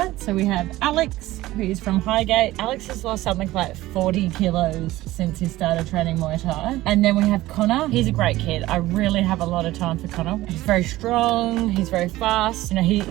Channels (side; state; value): left; quieter; 16.9 dB